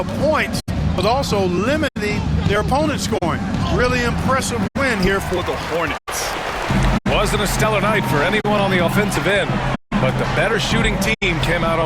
points, but also limiting their opponent's scoring. Really impressive win here for the Hornets. Wasn't a stellar night for anyone on the offensive end, but the better shooting team came out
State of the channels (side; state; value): both; identical; correlation 1.00